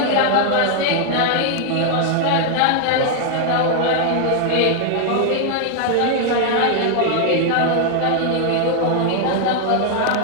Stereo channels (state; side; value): different; both; correlation 0.00